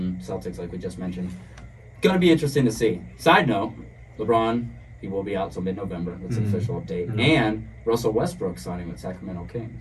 Celtics, like we just mentioned. Going to be interesting to see. Side note, LeBron, he will be out till mid-November. That's an official update. And Russell Westbrook signing with Sacramento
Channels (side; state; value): both; identical; correlation 1.00